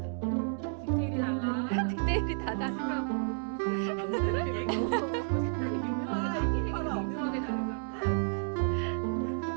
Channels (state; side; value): silent; left; digital silence